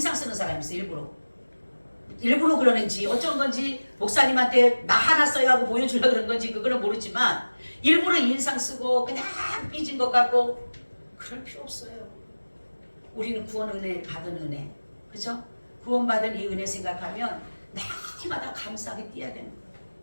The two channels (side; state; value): both; inverted; correlation -1.00